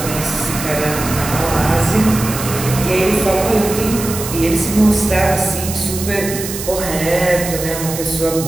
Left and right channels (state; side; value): noise; right; hiss, 8 dB below the sound